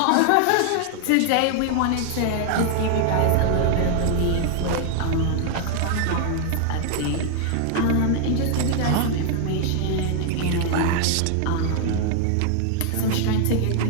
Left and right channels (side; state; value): both; different; correlation 0.00